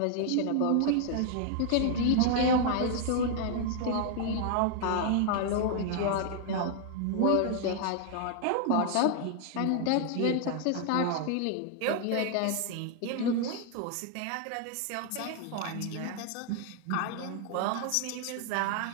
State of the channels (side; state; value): both; different; correlation 0.00